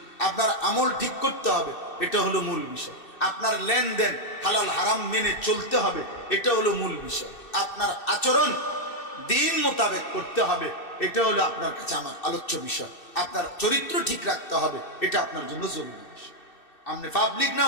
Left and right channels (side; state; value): right; late; 2.6 ms